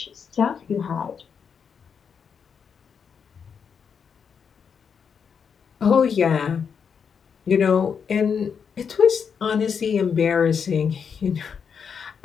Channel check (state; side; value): quieter; right; 6.7 dB